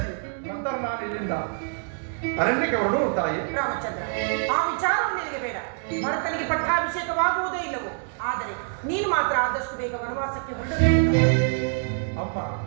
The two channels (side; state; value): left; silent; 61 dB below the other